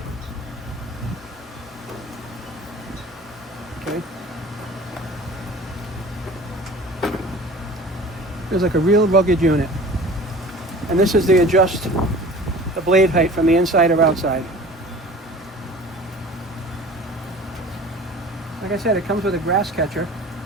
Okay. Feels like a real rugged unit. And this is the adjust the blade height from the inside or outside. Like I said, it comes with a grass catcher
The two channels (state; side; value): normal; both; correlation 0.42